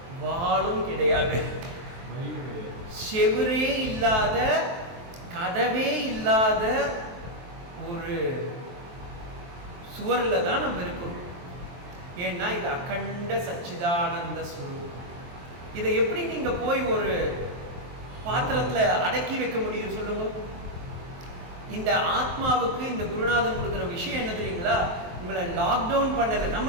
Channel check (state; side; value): late; left; 23 ms